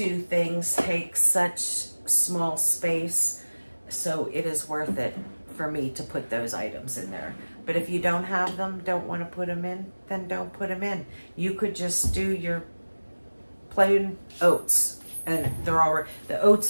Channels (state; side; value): inverted; both; correlation -1.00